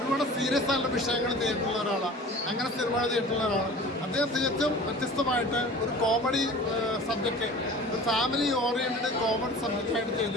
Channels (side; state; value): both; normal; correlation 0.41